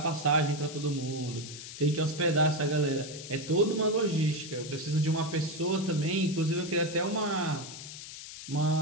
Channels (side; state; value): left; noise; hiss, 12 dB below the sound